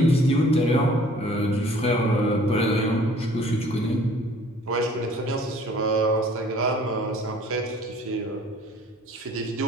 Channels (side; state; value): both; normal; correlation 0.53